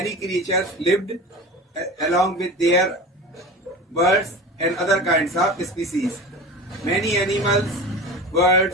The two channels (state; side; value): normal; both; correlation 0.32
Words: creatures lived along with their birds and other kinds of species. Many animals,